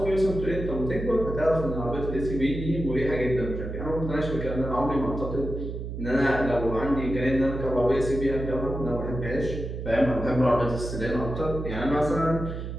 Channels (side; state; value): right; noise; hum, 6 dB below the sound